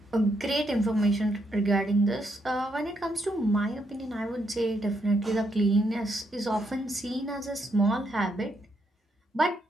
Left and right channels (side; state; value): both; normal; correlation 0.77